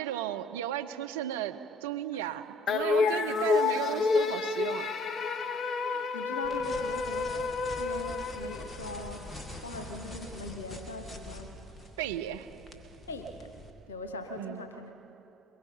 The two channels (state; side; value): normal; both; correlation 0.54